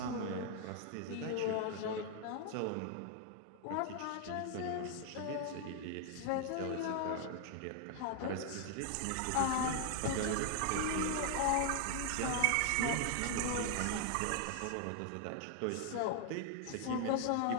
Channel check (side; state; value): both; different; correlation 0.00